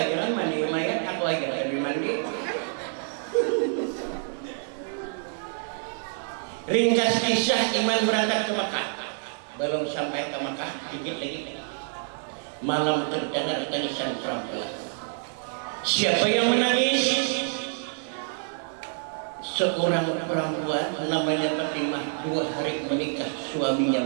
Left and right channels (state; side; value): silent; left; 60 dB below the other